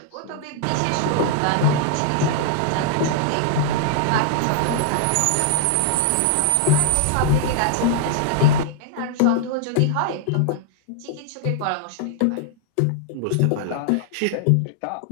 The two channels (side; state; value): both; different; correlation -0.01